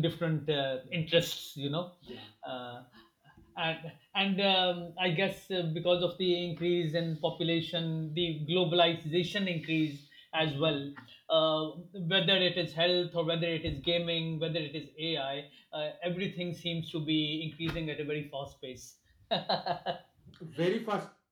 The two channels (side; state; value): both; identical; correlation 1.00